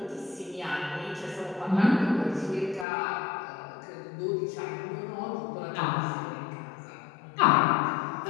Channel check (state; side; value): drops out; right; at 2.9 s